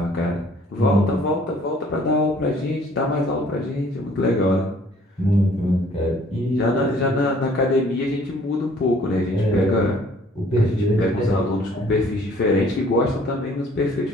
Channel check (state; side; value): normal; both; correlation 0.57